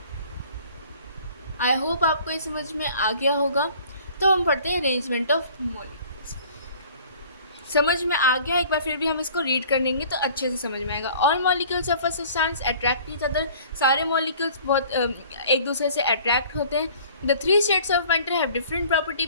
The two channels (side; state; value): both; inverted; correlation -0.50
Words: I hope आपको ये समझ में आ गया होगा। तो हम पढ़ते हैं अरेंजमेंट ऑफ मॉलिक्यूल्स। समझ में आ गया, एक बार फिर भी हम इसको रीड कर लेंगे तो अच्छे से समझ में आएगा। All molecules of a substance attract each other, सारे मॉलिक्यूल्स बहुत एक दूसरे से अट्रैक्ट होते हैं। The three states of matter have different property